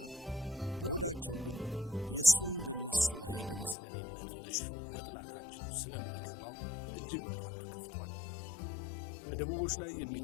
በሆዳቸው ግን የሱን በነሱ ላይ በመስለኔነት መሾም መጥላታቸውን ስለሚገባው እጅግ በጣም ተከፍቷል። በደቡቦች ላይ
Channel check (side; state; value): right; drops out; at 3.8 s